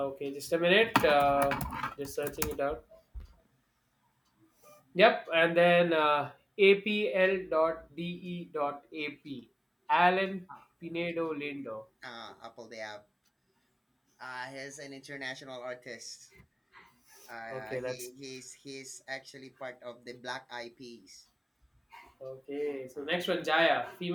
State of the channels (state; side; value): identical; both; correlation 1.00